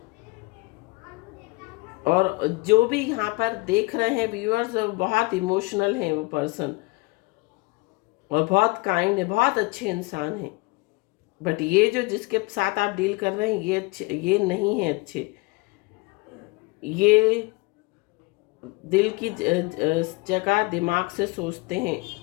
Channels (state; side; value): quieter; right; 25.7 dB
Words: और जो भी यहाँ पर देख रहे हैं व्यूअर्स, बहुत इमोशनल हैं वो पर्सन, और बहुत काइंड है, बहुत अच्छे इंसान हैं। बट ये जो जिसके साथ आप डील कर रहे हैं ये अच्छे, ये नहीं है अच्छे। ये दिल की जगह दिमाग से सोचते हैं,